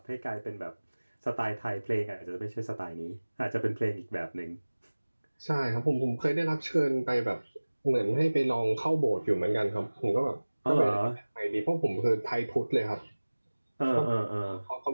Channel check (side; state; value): both; inverted; correlation -1.00